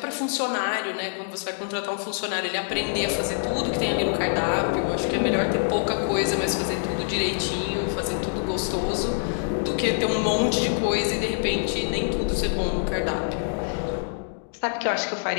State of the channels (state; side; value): silent; right; digital silence